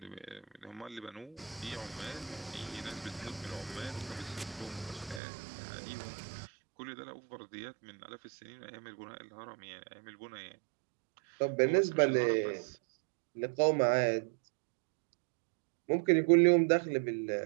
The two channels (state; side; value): drops out; left; at 5.2 s